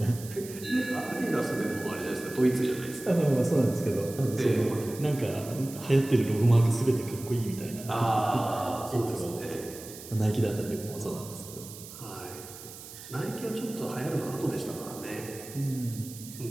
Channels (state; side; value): noise; right; hiss, 14 dB below the sound